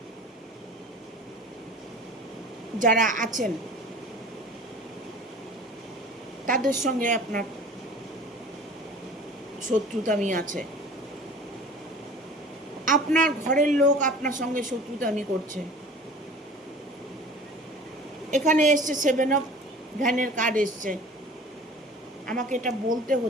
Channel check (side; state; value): both; normal; correlation 0.43